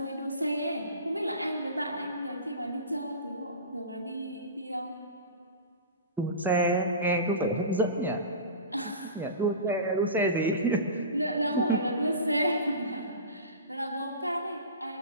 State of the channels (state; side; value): inverted; both; correlation -0.31